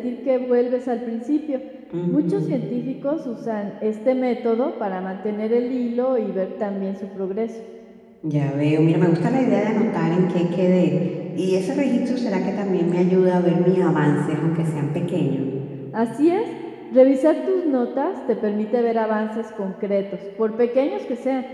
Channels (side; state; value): both; identical; correlation 1.00